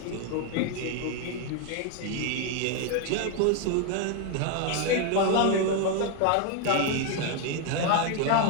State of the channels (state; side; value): different; both; correlation 0.01